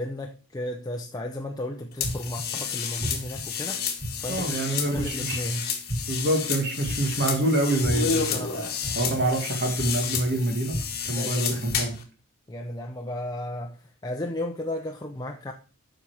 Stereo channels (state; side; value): normal; both; correlation 0.35